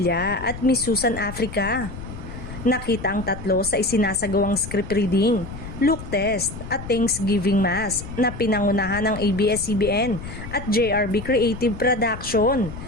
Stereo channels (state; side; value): noise; left; rumble, 11 dB below the sound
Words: at Miss Susan Africa. Nakita ang tatlo sa isinasagawang script reading, look test at Thanksgiving Mass na pinangunahan ng ABS-CBN at JRB Creative Production,